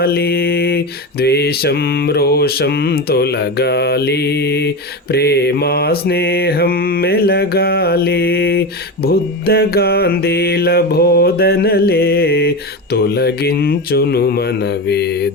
ద్వేషం రోషం తొలగాలి, ప్రేమ స్నేహం మెలగాలి. బుద్ధ గాంధీల బోధనలే తొలగించును మన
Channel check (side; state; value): both; normal; correlation 0.20